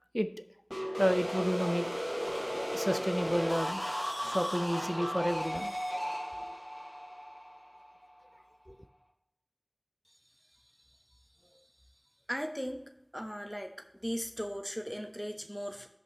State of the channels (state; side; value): identical; both; correlation 1.00